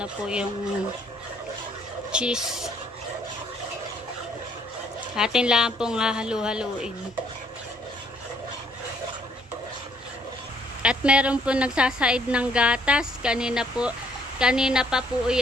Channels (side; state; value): both; normal; correlation 0.66